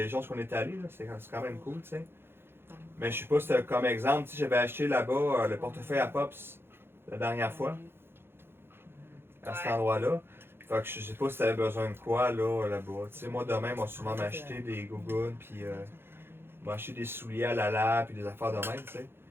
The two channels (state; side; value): late; left; 0.11 ms